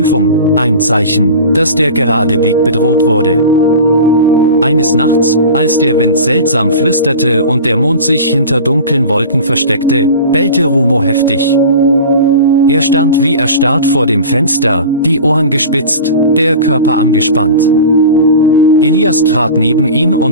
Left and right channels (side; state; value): both; inverted; correlation -0.35